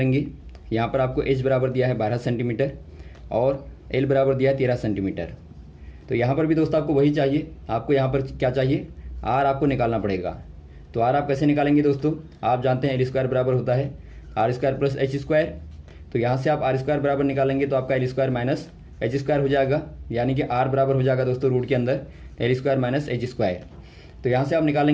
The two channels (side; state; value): both; identical; correlation 1.00